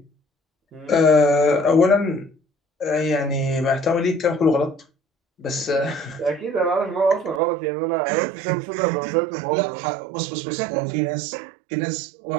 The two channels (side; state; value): left; drops out; at 7.4 s